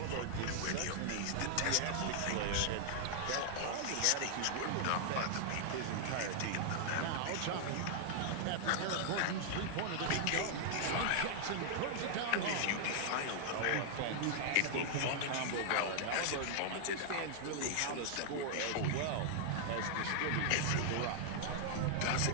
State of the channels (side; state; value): both; different; correlation -0.01